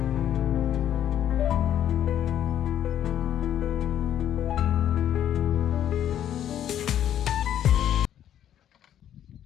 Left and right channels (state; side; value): quieter; right; 10.6 dB